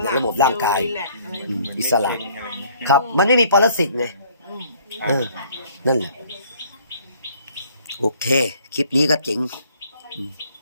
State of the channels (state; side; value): inverted; both; correlation -0.60